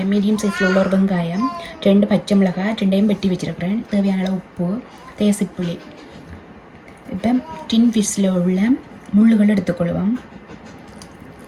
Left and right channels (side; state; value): both; identical; correlation 1.00